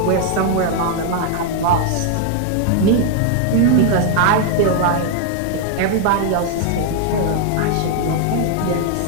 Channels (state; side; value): different; both; correlation 0.00